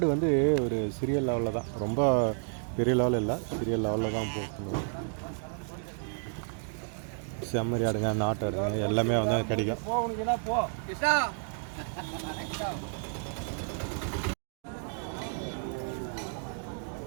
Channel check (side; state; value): left; silent; 57 dB below the other